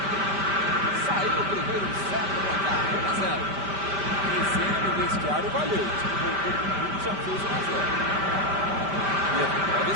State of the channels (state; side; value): late; left; 5.1 ms